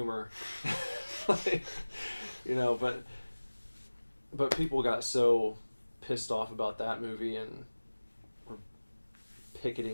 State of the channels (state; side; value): inverted; both; correlation -1.00